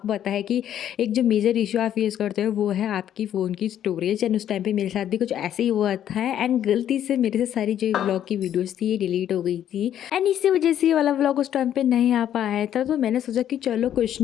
पता है कि एक जो मेजर इशू आप फेस करते हो वो है आपकी फ़ोन की स्टोरेज। एंड उस टाइम पे मेरे साथ भी कुछ ऐसे ही हुआ था एंड गलती से मेरे से सारी जो व्लॉग की वीडियोज़ थी ये डिलीट हो गई थी एंड इसी वजह से ये वाला व्लॉग उस टाइम पे नहीं आ पाया था। तो मैंने सोचा कि चलो कुछ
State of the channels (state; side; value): quieter; right; 10.6 dB